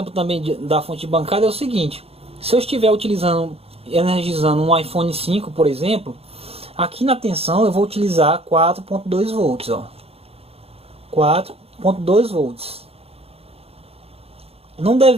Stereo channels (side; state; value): left; late; 0.29 ms